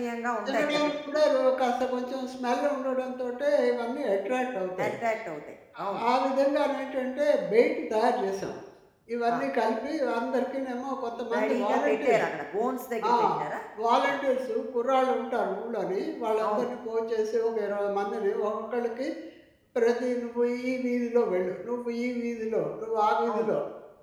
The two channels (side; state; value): both; identical; correlation 1.00